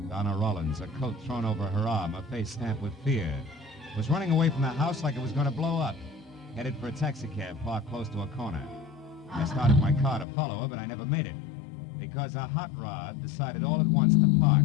Donna Rollins, a coat thrown over her arm, her face stamped with fear, was running away from the house like it was going to blow up, headed for a taxicab parked close to a corner. I started my car to follow her, but I never made it, because a hot rod decided all at once to park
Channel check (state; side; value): drops out; right; at 10.2 s